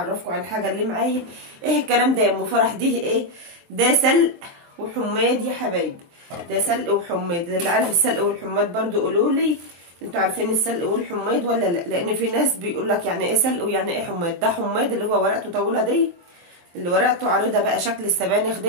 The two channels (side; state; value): left; late; 23 ms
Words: عن الحاجه اللي معايا. ايه الكلام ده يا ام فرح؟ دي ايه ده؟ سلق وحماد يا حبايبي. ده سلق وحماد. اللي عارف السلق والحماد برضو قولوا لي انتوا عارفين السلق والحماد ولا لا؟ لان في ناس بيقول لك يعني ايه سلق ويعني ايه حماد. ده حماد اللي هو ورقته طويله دي، اللي ورقته عريضه بقى شكل السبانخ